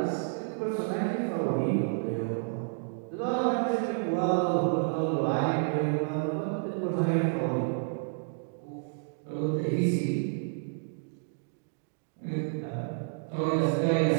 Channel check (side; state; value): left; silent; digital silence